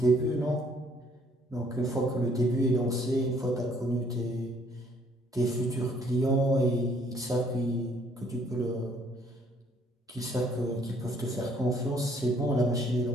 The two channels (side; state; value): both; normal; correlation 0.63